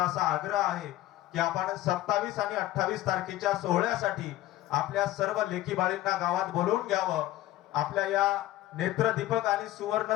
असा आग्रह आहे की आपण 27 आणि 28 तारखेच्या सोहळ्यासाठी आपल्या सर्व लेकीबाळींना गावात बोलवून घ्यावं. आपल्या या नेत्रदीपक आणि सुवर्ण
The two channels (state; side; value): quieter; right; 15.4 dB